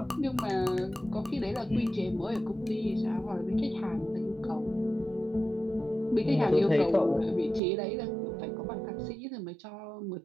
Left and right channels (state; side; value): drops out; left; at 7.6 s